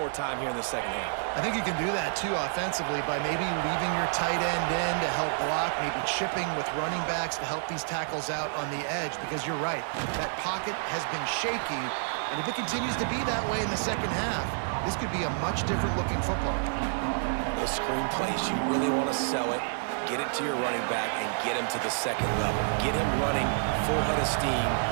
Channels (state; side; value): silent; left; digital silence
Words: time here in the second half. I think you can do that, too, offensively, by maybe leaving your tight end in to help block, maybe chipping with running backs to help these tackles out on the edge, because you're right, that pocket has been shaky, and if it continues to be that way in the second half, this could be a much different-looking football. Those screen plays, you really want to sell it, get it to your running back, and get him to the second level. Get him running full head of steam